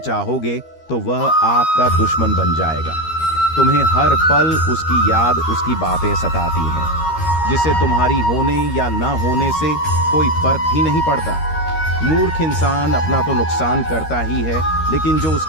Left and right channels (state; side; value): late; right; 13 ms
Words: चाहोगे तो वह आपका दुश्मन बन जाएगा। तुम्हें हर पल उसकी याद, उसकी बातें सताती हैं, जिससे तुम्हारी होने या ना होने से कोई फर्क ही नहीं पड़ता। मूर्ख इंसान अपना तो नुकसान करता ही है, लेकिन जो